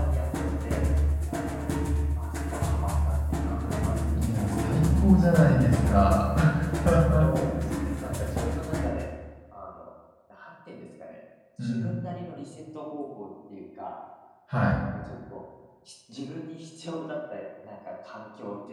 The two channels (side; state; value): both; identical; correlation 1.00